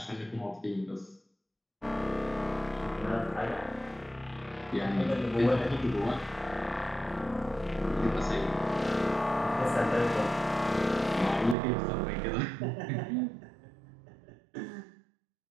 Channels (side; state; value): left; drops out; at 11.6 s